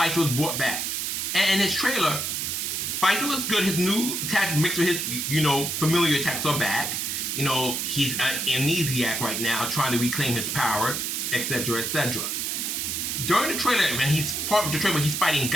was brought back. And in his trailer, Bison looks good. His new attacks mixed with his, familiar attacks are back. He's an amnesiac right now, trying to reclaim his power, etc., etc. During the trailer, when he's part of the trailer, he's fighting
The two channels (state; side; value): noise; right; hiss, 1 dB below the sound